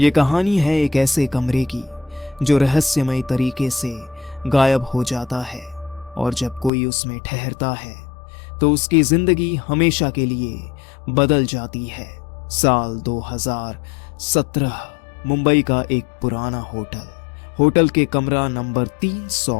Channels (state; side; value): drops out; right; at 6.7 s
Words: कहानी है एक ऐसे कमरे की जो रहस्यमय तरीके से गायब हो जाता है और जब कोई उसमें ठहरता है तो उसकी जिंदगी हमेशा के लिए बदल जाती है। साल 2017 मुंबई का एक पुराना होटल के कमरा नंबर 300